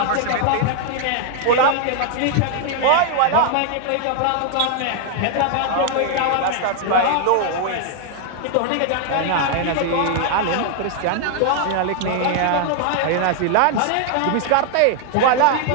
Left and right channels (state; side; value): different; both; correlation 0.00